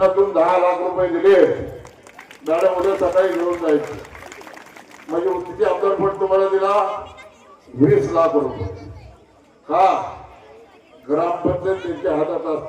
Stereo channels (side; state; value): both; identical; correlation 1.00